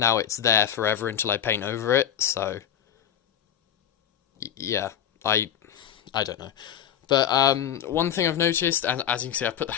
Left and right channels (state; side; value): quieter; right; 9.7 dB